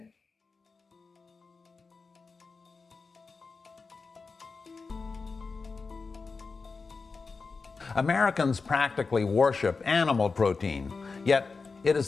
Americans practically worship animal protein, yet it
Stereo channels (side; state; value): right; quieter; 4.4 dB